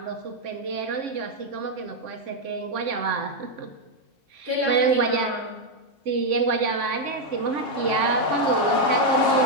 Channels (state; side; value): normal; both; correlation 0.01